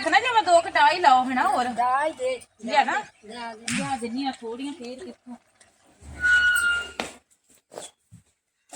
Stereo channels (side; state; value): both; identical; correlation 1.00